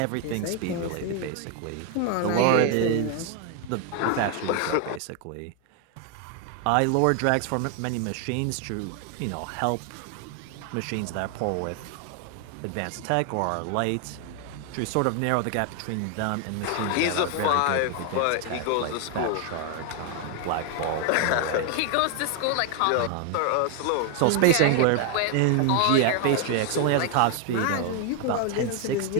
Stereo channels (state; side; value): different; both; correlation 0.00